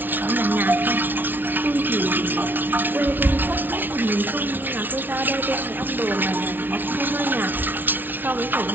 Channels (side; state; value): left; late; 0.092 ms